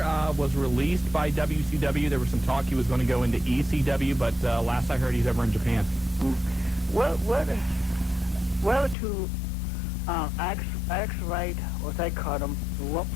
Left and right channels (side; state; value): right; drops out; at 9.0 s